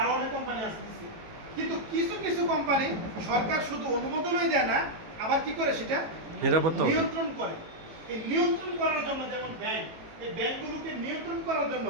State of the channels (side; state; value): left; late; 18 ms